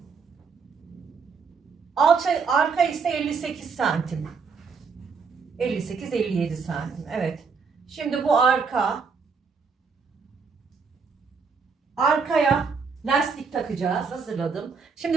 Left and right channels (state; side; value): quieter; left; 5.3 dB